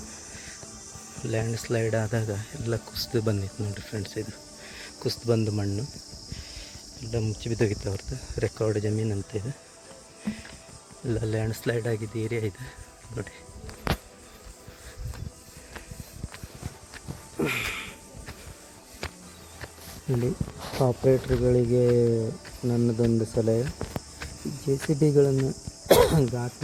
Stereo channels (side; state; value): both; identical; correlation 1.00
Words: ಲ್ಯಾಂಡ್ ಸ್ಲೈಡ್ ಆದಾಗ ಎಲ್ಲ ಕುಸಿದು ಬಂದಿತ್ತು ನೋಡಿರಿ ಫ್ರೆಂಡ್ಸ್. ಇದು ಕುಸಿದು ಬಂದು ಮಣ್ಣು ಎಲ್ಲ ಮುಚ್ಚಿ ಬಿದ್ದೋಗಿತ್ತು ಅವ್ರದ್ದು. ರೆಕಾರ್ಡ್ ಜಮೀನು ಅಂತ ಇದೆ. ಎಲ್ಲ ಲ್ಯಾಂಡ್ ಸ್ಲೈಡ್ ಆಗಿದ್ದು ಏರಿಯಾ ಇದೆ ನೋಡಿ. ಇಲ್ಲಿ ಆಪ್ರೇಟ್ರ್ಗಳಿಗೆ ನನ್ನದೊಂದು ಸಲಹೆ, JCBಗಳನ್ನು